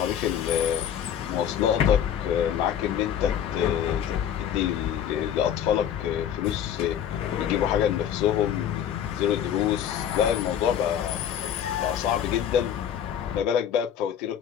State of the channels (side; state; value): right; quieter; 9.4 dB